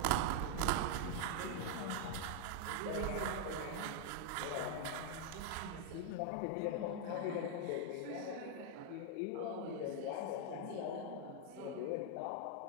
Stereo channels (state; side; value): different; both; correlation 0.00